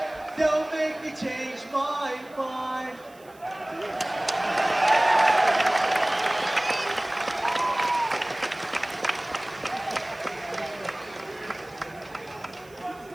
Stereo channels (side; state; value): right; noise; hiss, 27 dB below the sound